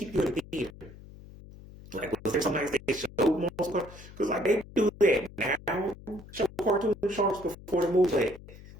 you in the theater? Like, was there sometimes they showed multiple cartoons? Because, like, they do that now. Show cartoon shorts before the movie. Like,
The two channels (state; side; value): noise; left; hum, 18 dB below the sound